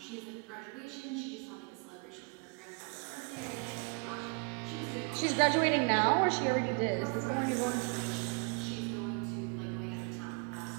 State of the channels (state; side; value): quieter; left; 34.5 dB